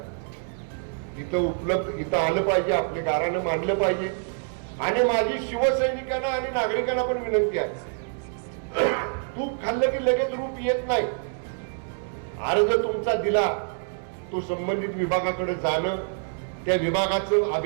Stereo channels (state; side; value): silent; left; 61 dB below the other